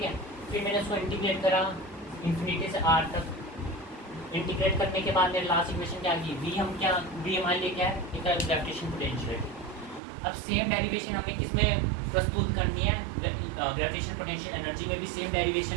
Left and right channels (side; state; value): left; drops out; at 10.0 s